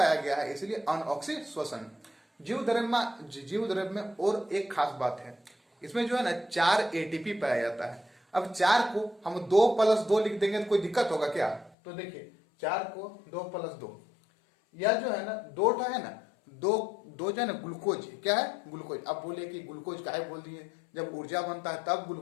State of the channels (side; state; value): right; drops out; at 11.7 s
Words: गया है इसलिए अनऑक्सीश्वसन। जीव द्रव्य में और एक खास बात है, इसमें जो है ना 4 एटीपी पाया जाता है। अब 4 को हम 2+2 लिख देंगे तो कोई दिक्कत होगा क्या? तो देखिए 4 को 2+2, यह जो है ना दो है ना, दो जो है ना ग्लूकोज, क्या है, ग्लूकोज। अब बोले कि ग्लूकोज काहे बोल दिए, जब ऊर्जा बनता है तब